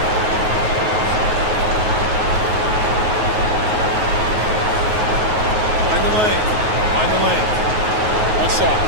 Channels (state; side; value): late; left; 9.4 ms